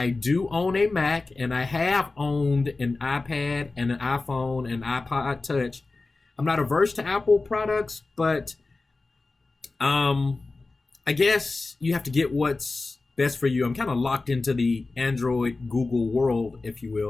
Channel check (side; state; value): right; quieter; 3.5 dB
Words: do own a Mac, and I have owned an iPad and an iPhone and iPod Touch. I'm not averse to Apple products, but I guess you have to get what's best for you. I'm kind of locked into the Android Google world, if you